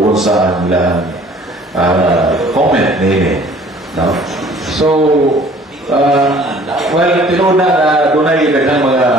sa nilang comment nila. No? So, well, tinood na doon ay daghang mga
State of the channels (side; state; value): both; normal; correlation 0.53